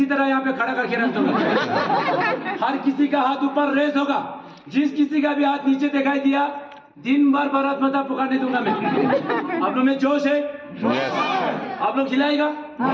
तरह यहाँ पे खड़ा करके रख दूंगा। हर किसी का हाथ ऊपर रेस होगा, जिस किसी का भी हाथ नीचे दिखाई दिया, दिन भर भारत माता पुकारने दूंगा मैं। आप लोग में जोश है? आप लोग खिलाएगा?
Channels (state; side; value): identical; both; correlation 1.00